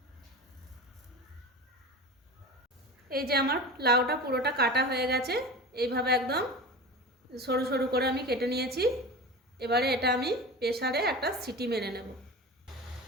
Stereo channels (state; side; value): normal; both; correlation 0.30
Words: এই যে আমার লাউটা পুরোটা কাটা হয়ে গেছে, এইভাবে একদম সরু সরু করে আমি কেটে নিয়েছি। এবারে এটা আমি প্রেসারে একটা সিটি মেরে নেব।